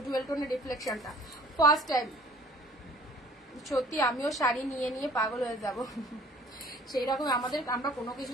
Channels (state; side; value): normal; both; correlation 0.52